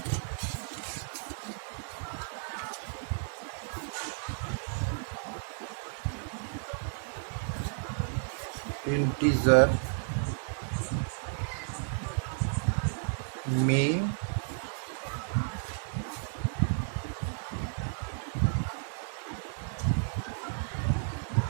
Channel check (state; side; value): silent; left; digital silence